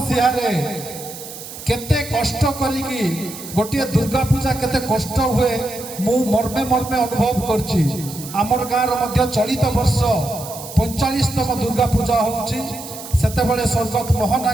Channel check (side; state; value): right; noise; hiss, 13 dB below the sound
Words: केते कष्ट करी गोटे दुर्गा पूजा केते कष्ट हुए मु मर्मे मर्मे अनुभव करछि। आमर गाँव मध्य चलित वर्ष 45तम दुर्गा पूजा होउछि। सेते बेले स्वर्गत मोहन